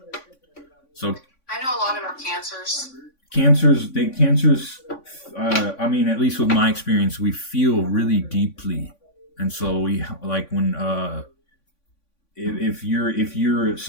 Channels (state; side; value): late; right; 3.5 ms